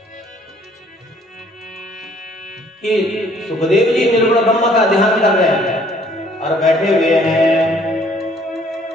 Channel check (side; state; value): both; normal; correlation 0.60